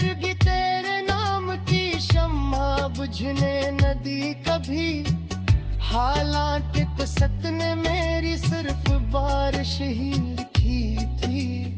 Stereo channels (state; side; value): identical; both; correlation 1.00